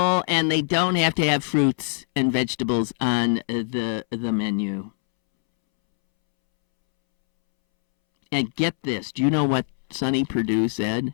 and they don't have to have fruits and vegetables on the menu. And get this, do you know what Sonny Perdue said?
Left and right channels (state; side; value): silent; right; 63 dB below the other